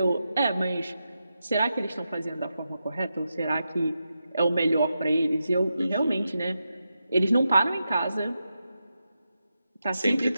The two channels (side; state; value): both; inverted; correlation -0.88